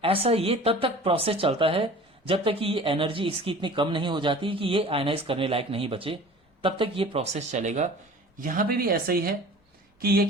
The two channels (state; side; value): normal; both; correlation 0.43